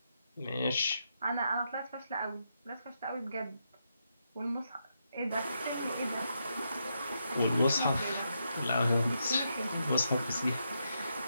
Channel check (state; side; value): inverted; both; correlation -0.82